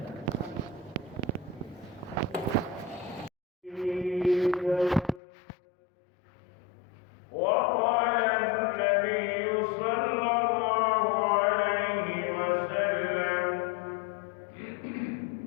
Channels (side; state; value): right; drops out; at 5.2 s